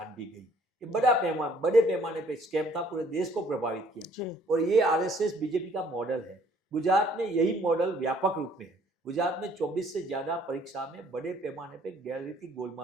भी गई। ये बड़े पैमाने पे स्कैम था, पूरे देश को प्रभावित किया। और ये आरएसएस बीजेपी का मॉडल है। गुजरात में यही मॉडल व्यापक रूप में है। गुजरात में 24 से ज्यादा परीक्षा में बड़े पैमाने पे गैररीति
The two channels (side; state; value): both; normal; correlation 0.60